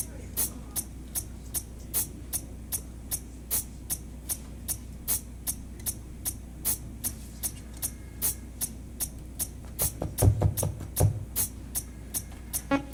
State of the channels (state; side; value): identical; both; correlation 1.00